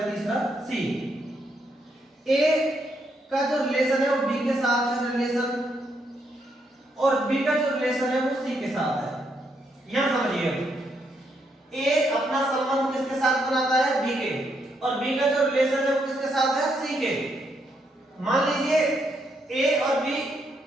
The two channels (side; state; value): both; normal; correlation 0.77